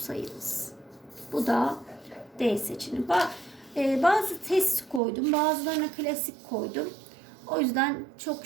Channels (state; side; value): drops out; left; at 5.0 s